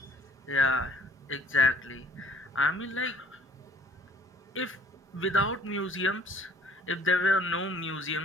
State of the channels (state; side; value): normal; both; correlation 0.56